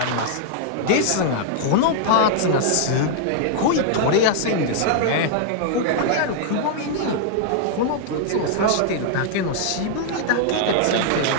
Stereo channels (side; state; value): both; different; correlation -0.01